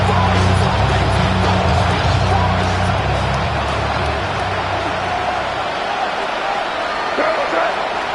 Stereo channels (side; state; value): both; identical; correlation 1.00